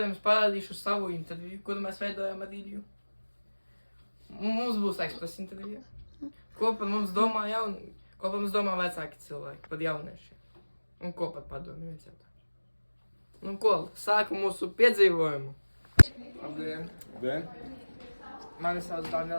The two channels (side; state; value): both; inverted; correlation -1.00